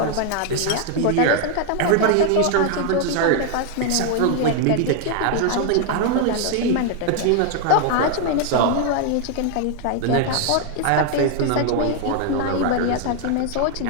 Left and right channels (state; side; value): different; both; correlation 0.00